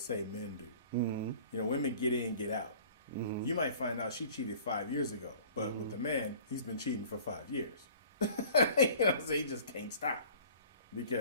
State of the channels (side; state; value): both; inverted; correlation -0.47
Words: men do. You know, women get in, get out. You might find out she cheated 5 years ago, but with the man, he's been cheating for 5 years. So he just can't stop